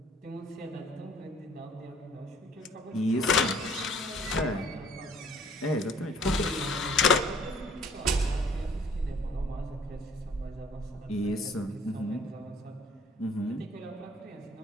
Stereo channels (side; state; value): both; normal; correlation 0.57